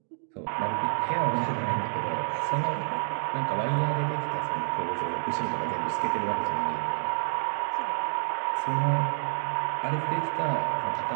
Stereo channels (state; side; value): silent; left; digital silence